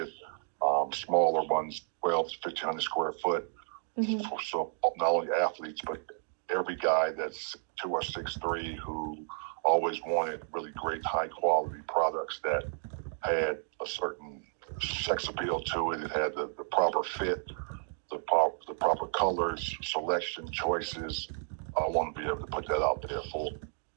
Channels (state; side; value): silent; left; digital silence